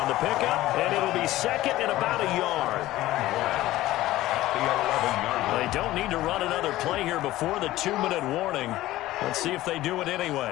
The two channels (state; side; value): quieter; right; 16.1 dB